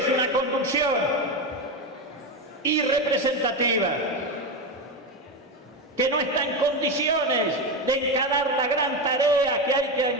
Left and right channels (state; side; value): normal; both; correlation 0.15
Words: una conducción irrepresentativa, que no está en condiciones de encarar la gran tarea que hay que